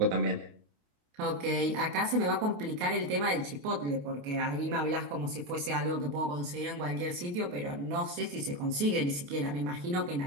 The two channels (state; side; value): late; left; 28 ms